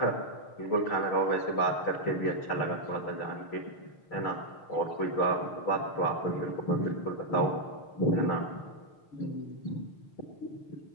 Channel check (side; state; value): right; late; 6.5 ms